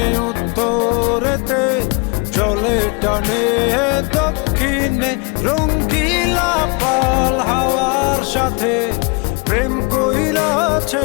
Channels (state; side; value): quieter; right; 31.6 dB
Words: উত্তরেতে, জলে টানে দক্ষিণে, রঙ্গিলা পাল হাওয়ার সাথে প্রেম কইরাছে